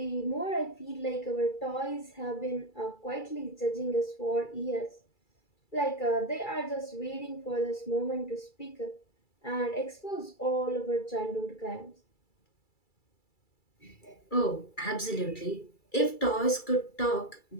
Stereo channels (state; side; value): late; right; 2.3 ms